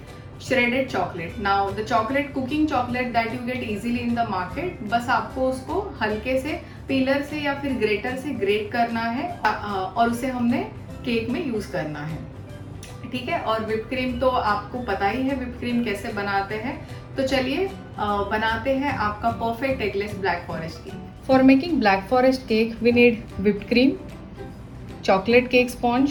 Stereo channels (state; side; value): identical; both; correlation 1.00